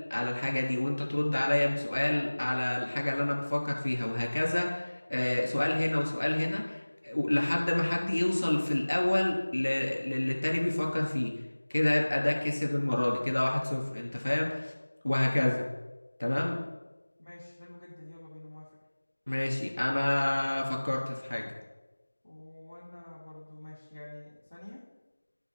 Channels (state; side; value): inverted; both; correlation -1.00